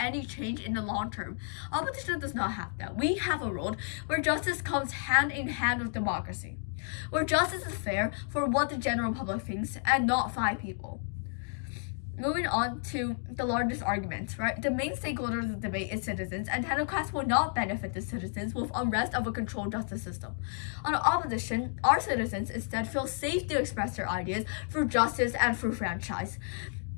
change in the long term. Opposition does not have that. We have a world where justice comes hand in hand with democracy, where justice is fair for what the general public thinks and not 5 people. Moving on to the largest arguments, right? The main stakeholder of the debate is citizens, and technocrats will not benefit the citizens with unrest of a controlled justice system. On the opposition, our citizens instead feel safe to express their ideas through justice and through franchise.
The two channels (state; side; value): silent; right; 57 dB below the other